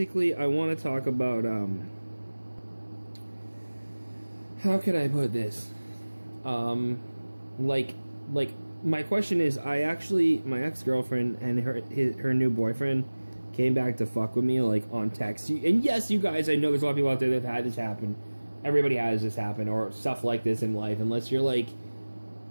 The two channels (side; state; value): both; inverted; correlation -1.00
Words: I want to talk about, how could I put this? My question is, my ex-girlfriend and her new boyfriend came back to fuck with me, on text. And yes, you guys, I know there's a lot of people out there that have had this happen. Everybody has this happen, or stuff like this in life, unless you're,